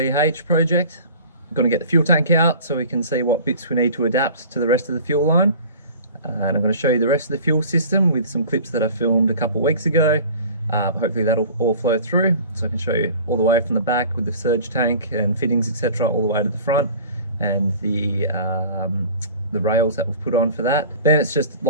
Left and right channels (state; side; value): inverted; both; correlation -0.43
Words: project, I'm going to get the fuel tank out so we can see what bits we need to adapt to the rest of the fuel line. And I'm going to show you the rest of the fuel system with some clips that I filmed a couple of weeks ago. Hopefully that'll all flow through, so I can show you all the way from the back with the surge tank and fittings, etc., all the way to the front, and the rails that we've put on for that. Then it's just